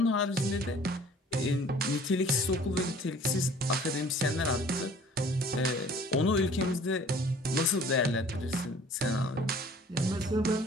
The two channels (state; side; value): normal; both; correlation 0.51